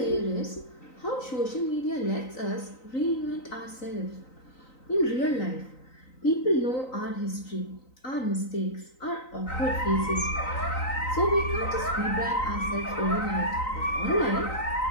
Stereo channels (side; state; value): right; late; 3.9 ms